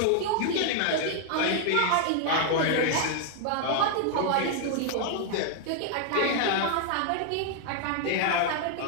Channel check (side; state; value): both; different; correlation 0.00